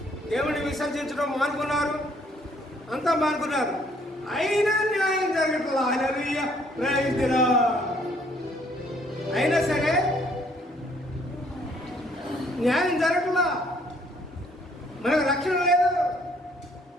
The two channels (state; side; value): normal; both; correlation 0.64